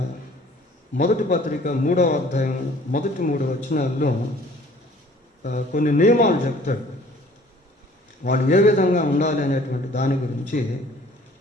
మొదటి పత్రిక 3వ అధ్యాయం మొదటి 3 వచనాల్లో కొన్ని నియమాలు చెప్తాడు. వాళ్ళు ఏ విధంగా ఉండాలి అనేటువంటి దాని గురించి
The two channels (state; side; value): normal; both; correlation 0.53